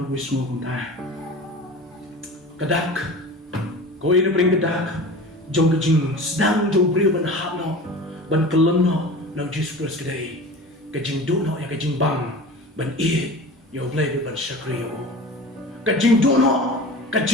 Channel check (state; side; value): normal; both; correlation 0.36